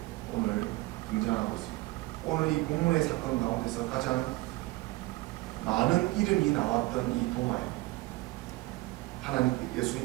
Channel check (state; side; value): quieter; left; 21.1 dB